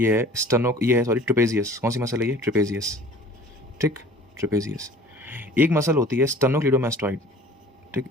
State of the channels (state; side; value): normal; both; correlation 0.47